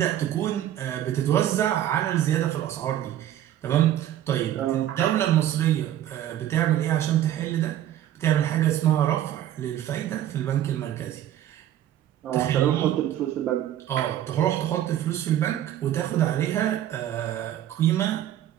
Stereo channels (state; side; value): quieter; left; 11.9 dB